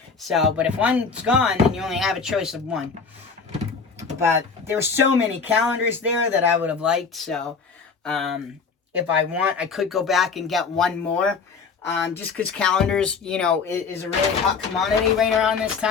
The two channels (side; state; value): right; quieter; 5.2 dB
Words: So, but if one's gone, then you only have a choice of one. But there were so many calendars there that I would have liked. So, if I want, I could go back and get one more. Just because calendars, you know, is a really hot commodity right around this